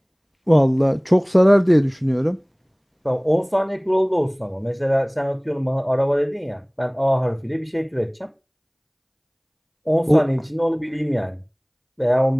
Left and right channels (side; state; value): both; identical; correlation 1.00